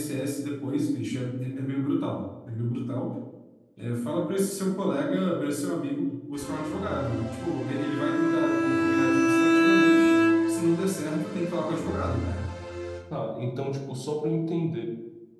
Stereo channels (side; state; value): both; identical; correlation 1.00